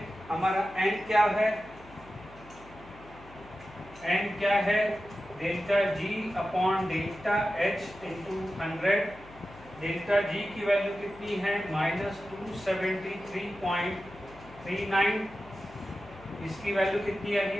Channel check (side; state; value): left; noise; hum, 20 dB below the sound